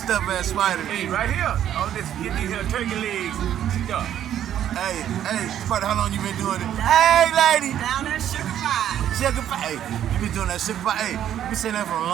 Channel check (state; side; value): quieter; left; 10.7 dB